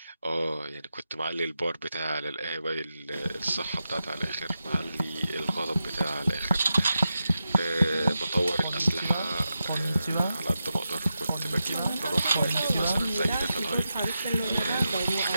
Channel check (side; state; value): both; inverted; correlation -0.89